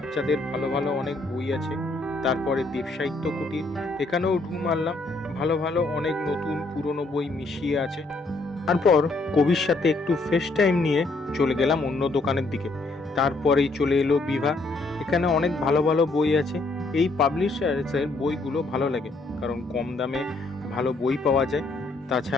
ভালো ভালো অনেক বই আছে। তারপরে দেব সাহিত্য কুটির, এখানেও ঢু মারলাম, ভালো ভালো অনেক নতুন পুরনো বই মিশিয়ে আছে। তারপর কবির সাথে একটু ফেস টাইম নিয়ে চলে গেলাম অন্য দোকানের দিকে। তারপরেই চলে এলো বিভা। এখানে অনেক ভালো ভালো বই আছে। এই পাবলিশার্সের বইগুলো ভালো লাগে, কারণ কম দামে ভালো বই পাওয়া যায়।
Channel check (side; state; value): right; quieter; 3.2 dB